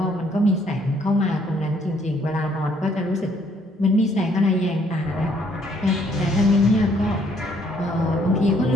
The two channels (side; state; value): both; normal; correlation 0.67